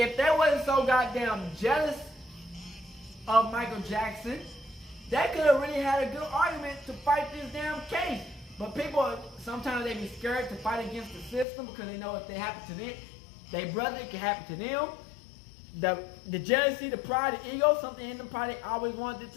they wasn't so goddamn jealous of Michael Jackson, they could have really had a good argument to fight this damn case. But people, sometimes they be scared to fight against the system because they know if they happen to them, their brother, it can happen to them. The jealousy, the pride, the ego, something in them probably always wanted it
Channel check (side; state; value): right; drops out; at 11.5 s